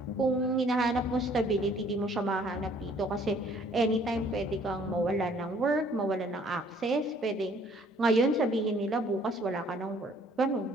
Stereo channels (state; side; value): normal; both; correlation 0.59